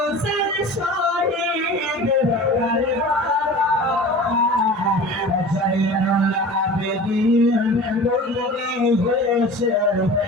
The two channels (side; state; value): both; normal; correlation 0.38